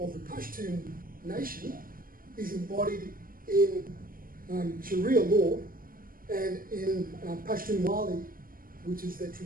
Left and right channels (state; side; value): late; left; 0.41 ms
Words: of the Pashtun nation is embodied in Sharia law and in Pashtun Wali, which is the